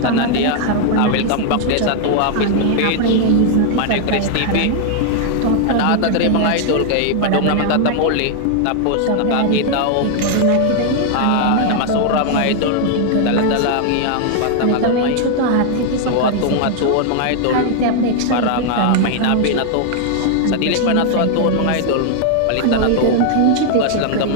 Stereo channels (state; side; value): different; both; correlation 0.00